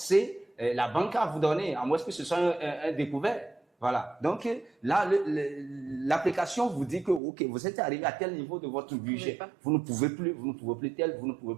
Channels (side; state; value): left; drops out; at 7.2 s